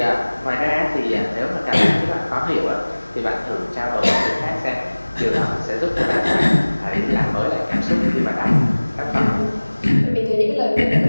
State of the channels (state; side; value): inverted; both; correlation -1.00